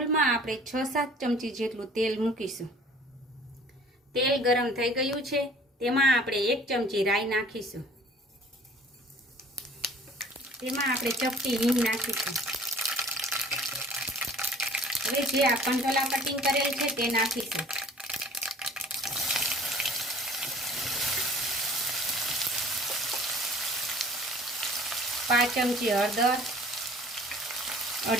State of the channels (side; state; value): both; normal; correlation 0.50